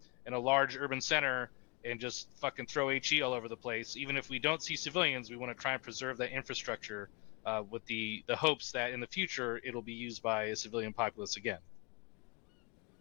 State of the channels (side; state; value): right; quieter; 28.9 dB